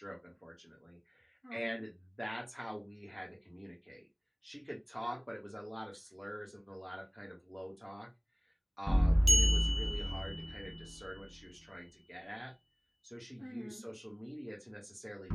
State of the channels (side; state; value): both; identical; correlation 1.00